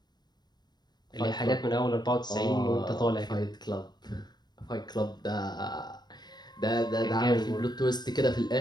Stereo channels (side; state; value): right; late; 0.20 ms